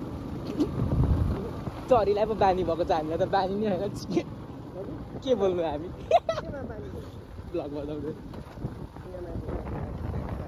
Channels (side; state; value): both; identical; correlation 1.00